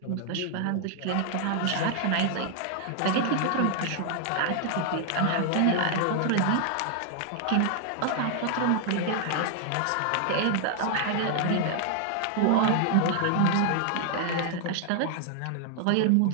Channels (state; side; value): different; both; correlation 0.00